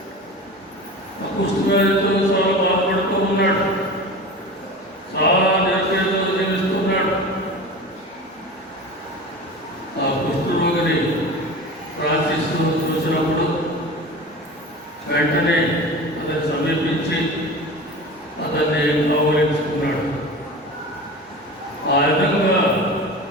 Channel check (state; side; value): normal; both; correlation 0.33